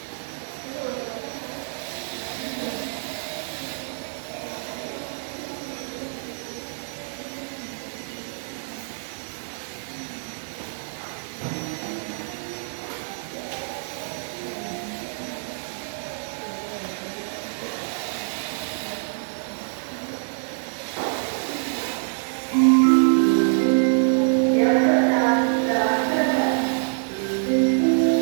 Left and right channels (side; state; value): left; silent; digital silence